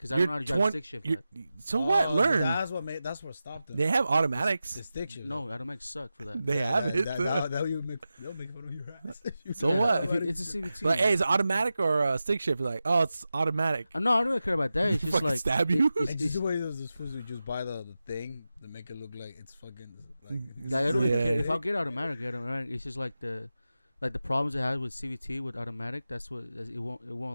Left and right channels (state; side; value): inverted; both; correlation -0.93